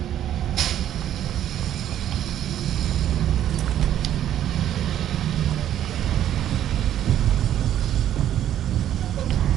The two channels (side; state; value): left; quieter; 11.2 dB